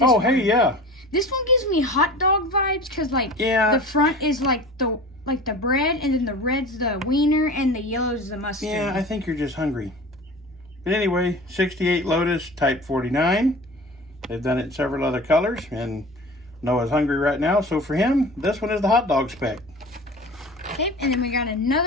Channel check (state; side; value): normal; both; correlation 0.38